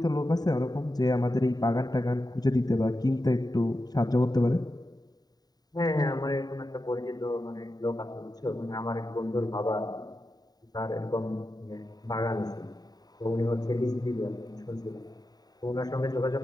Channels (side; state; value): right; late; 0.19 ms